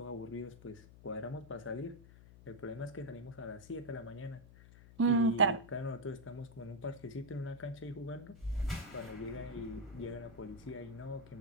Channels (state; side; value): noise; left; hum, 18 dB below the sound